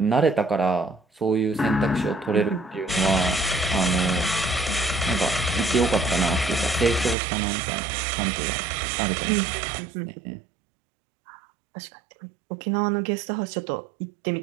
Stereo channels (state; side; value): drops out; left; at 7.2 s